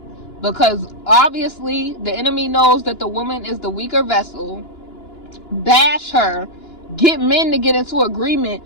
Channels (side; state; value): right; late; 2.9 ms